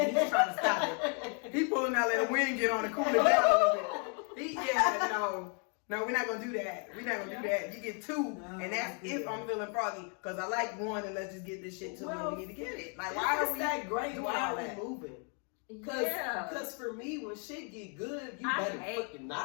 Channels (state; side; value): quieter; right; 39.8 dB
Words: he's trying to stop it. He pulling out let the wind get on and cool it down a little bit. No, we're not gonna do that. We're not gonna do that. You get two, and that's if I'm feeling froggy. Because I like one, and let's just get this shit to when we need to get it. Like, why are we that great? doing Why all are we that? moving? Yeah. Cause for me, when shit get good, you I better hate- fucking